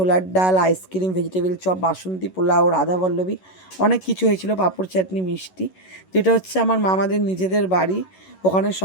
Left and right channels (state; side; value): late; right; 11 ms